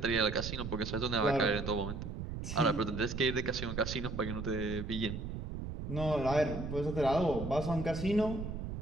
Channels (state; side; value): noise; right; rumble, 6 dB below the sound